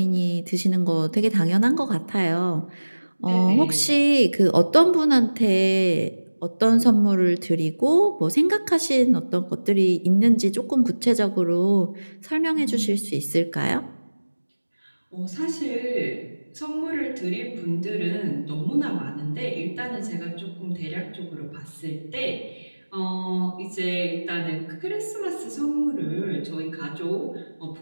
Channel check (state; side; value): inverted; both; correlation -1.00